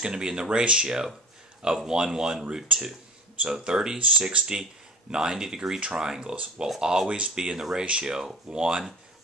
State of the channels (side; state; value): both; normal; correlation 0.40